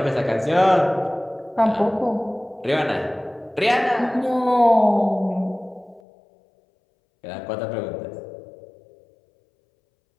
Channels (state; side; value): drops out; right; at 6.0 s